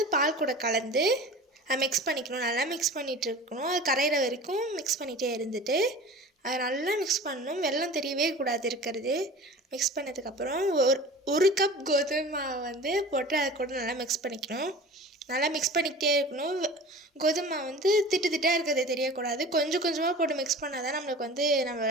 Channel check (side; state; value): both; normal; correlation 0.38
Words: பால் கூட கலந்து அதை மிக்ஸ் பண்ணிக்கணும். நல்லா மிக்ஸ் பண்ணிகிட்டு இருக்கணும். அது கரையிற வரைக்கும் மிக்ஸ் பண்ணிகிட்டே இருந்துட்டு அதை நல்லா மிக்ஸ் பண்ணணும். வெல்லம் தெரியவே கூடாது இருக்கிறது. மிக்ஸ் பண்ணதுக்கப்புறம் ஒரு கப் கோதுமை மாவை போட்டு அதை கூட நல்லா மிக்ஸ் பண்ணிக்கணும். நல்லா மிக்ஸ் பண்ணிக்கிட்டே இருக்கணும். கோதுமை மாவு திட்டாக இருக்கிறது தெரியக்கூடாது. கொஞ்சம் கொஞ்சமாக போட்டு மிக்ஸ் பண்ணால் தான் நம்மளுக்கு